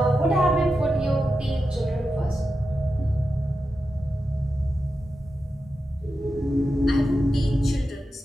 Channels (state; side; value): normal; both; correlation 0.90